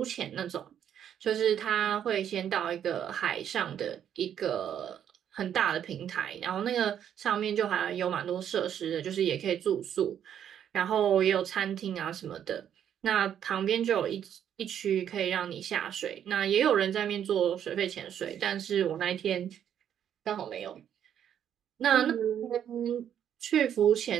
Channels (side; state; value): left; quieter; 9.5 dB